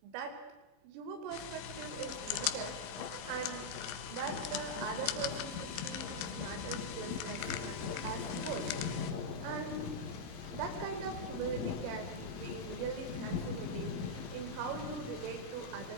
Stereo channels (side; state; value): left; late; 26 ms